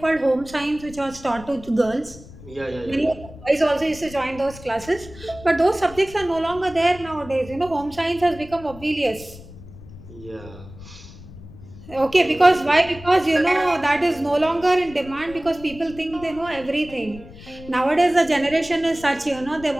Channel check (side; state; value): left; noise; rumble, 18 dB below the sound